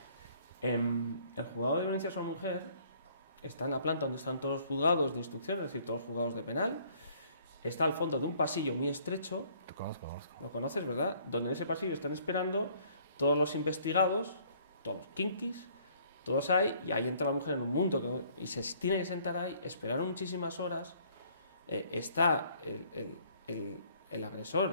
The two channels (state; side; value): inverted; both; correlation -0.60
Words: El juzgado de violencia sobre la mujer está en la planta donde están todos los juzgados de instrucción, es decir, todos los juzgados de penal. Está al fondo de un pasillo muy estrecho. Conozco. Lo conoces, ¿verdad? Donde en ese pasillo están esperando todos los investigados, todos los kinkis, todos ahí, y ahí entra la mujer en un mundo y se tiene que sentar ahí, esperar muchísimas horas. Está el